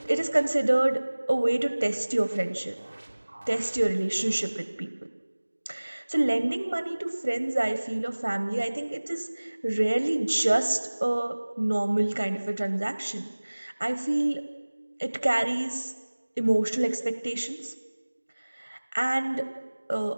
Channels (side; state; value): both; inverted; correlation -1.00